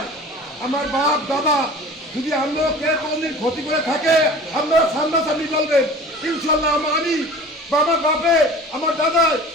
আমার বাপ দাদা যদি আমরা কে কোনদিন ক্ষতি করে থাকে আপনারা সামনাসামনি বলবেন ইনশাল্লাহ। আমি বাবা বাপে আমার দাদা,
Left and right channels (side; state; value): both; normal; correlation 0.41